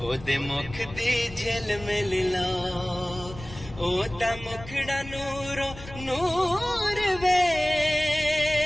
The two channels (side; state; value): left; noise; rumble, 15 dB below the sound